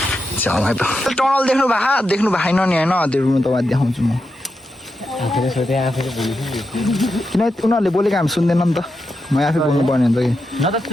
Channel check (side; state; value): both; normal; correlation 0.87